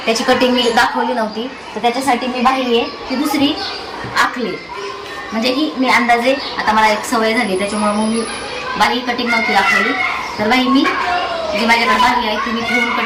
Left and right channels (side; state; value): both; identical; correlation 1.00